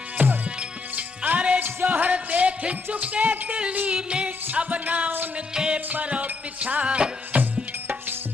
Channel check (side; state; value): right; quieter; 4.0 dB